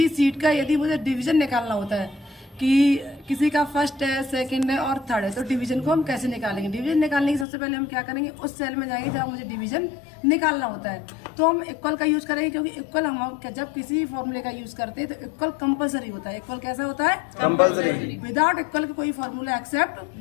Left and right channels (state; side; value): drops out; right; at 7.5 s